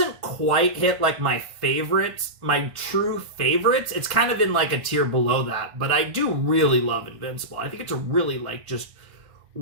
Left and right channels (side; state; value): left; late; 1.5 ms